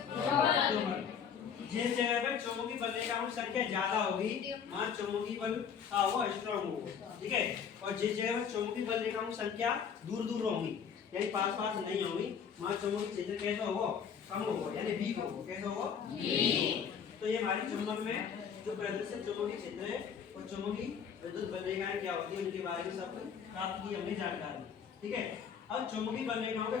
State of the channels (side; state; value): right; quieter; 7.2 dB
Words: दुर्बल। जिस जगह पर चुंबकीय बलरेखा की संख्या ज्यादा होगी वहां चुंबकीय बल का होगा स्ट्रांग होगा। ठीक है, और जिस जगह पर चुंबकीय बलरेखा की संख्या दूर होगी यानी पास नहीं होगी वहां चुंबकीय क्षेत्र कैसा होगा? कम होगा यानी वीक होगा। कैसा होगा? वीक। तो ये हमारी चुंबक में जो प्रदर्शित चुंबकीय क्षेत्र है और चुंबकीय विद्युत बलरेखाएं क्या होती है उनके बारे में सब प्राप्त की हमने जानकारी। ठीक है, अब चुंबकीय बलरेखाओं के